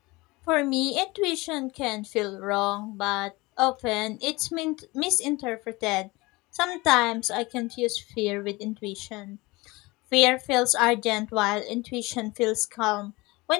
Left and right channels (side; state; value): right; quieter; 22.8 dB